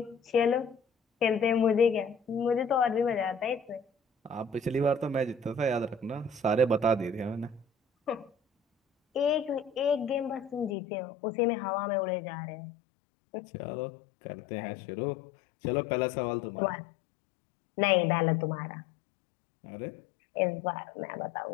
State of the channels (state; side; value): drops out; right; at 10.8 s